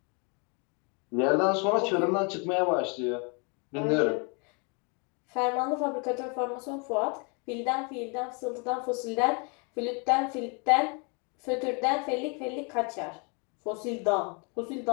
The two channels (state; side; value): quieter; right; 33.9 dB